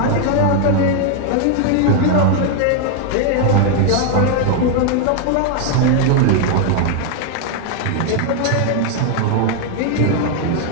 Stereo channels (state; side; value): different; both; correlation 0.00